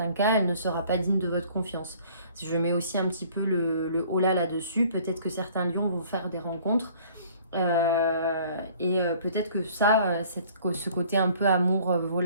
cas, elle ne sera pas digne de votre confiance. Si je mets aussi un petit peu le holà là-dessus, peut-être que certains lions vont faire des rencontres et peut-être que ce côté un peu amour,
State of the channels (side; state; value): both; inverted; correlation -0.54